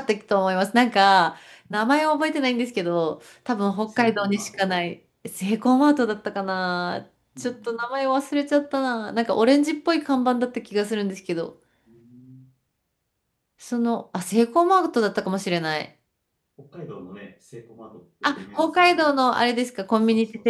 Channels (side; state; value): both; identical; correlation 1.00